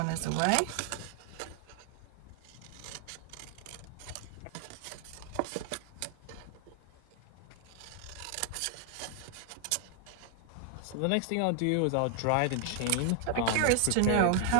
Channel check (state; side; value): different; both; correlation 0.00